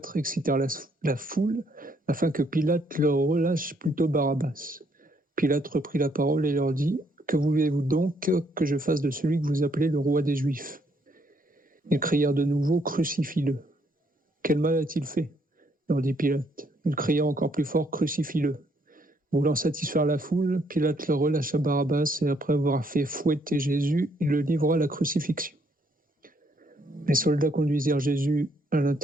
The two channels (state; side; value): normal; both; correlation 0.70